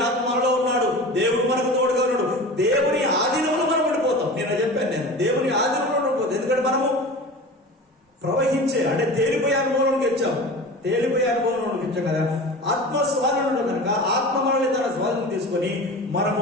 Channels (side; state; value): both; normal; correlation 0.34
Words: ఆత్మలో ఉన్నాడు, దేవుడు మనకు తోడుగా ఉన్నాడు. దేవుని ఆధీనంలో మనం ఉండిపోతాం. నేను దేవుని ఆధీనంలో ఉండిపోతాం. ఎందుకంటే మనము ప్రవహించే అంటే తేలిపోయే అనుభవంలోకి వచ్చాం కదా. ఆత్మ స్వాధీనంలో కనుక ఆత్మ మనల్ని తన స్వాధీనం తీసుకొని మనము